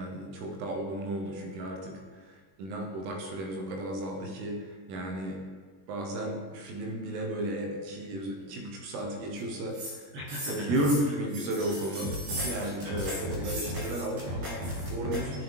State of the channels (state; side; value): late; left; 21 ms